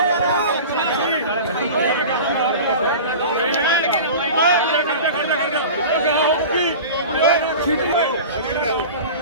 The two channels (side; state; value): both; inverted; correlation -0.35